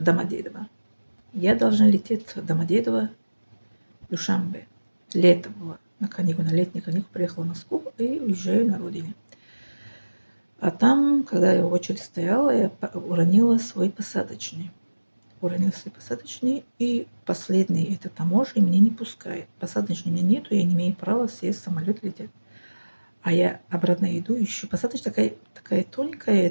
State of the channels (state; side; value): inverted; both; correlation -1.00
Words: Я должна лететь в Домодедово, Душанбе. Лето было. На летние каникулы приехала в Москву и уезжаю на родине. А там, когда я в очереди стояла, я уронила свой посадочный. И последний это таможня мне не пускает. Посадочный у меня нету, я не имею права сесть в самолет лететь. А я обратно иду, ищу. Посадочная такая тоненькая,